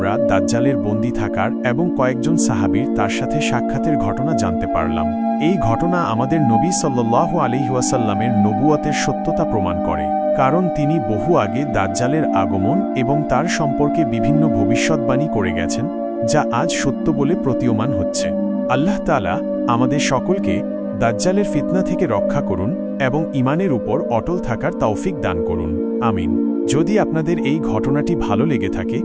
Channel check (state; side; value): identical; both; correlation 1.00